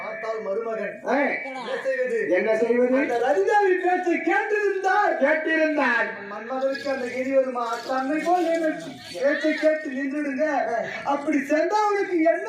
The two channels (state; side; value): identical; both; correlation 1.00